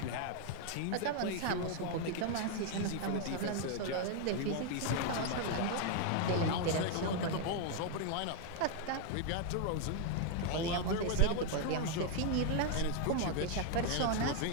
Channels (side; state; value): both; different; correlation 0.00